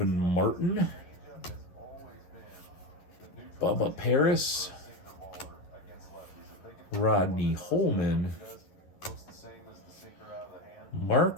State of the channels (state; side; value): late; right; 11 ms